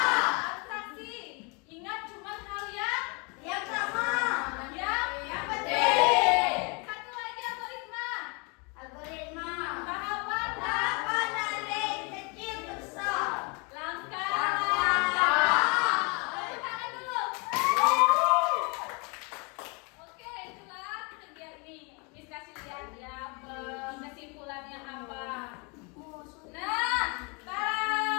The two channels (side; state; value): right; quieter; 31.8 dB